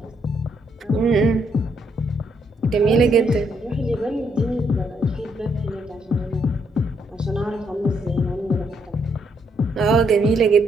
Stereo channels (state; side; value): normal; both; correlation 0.74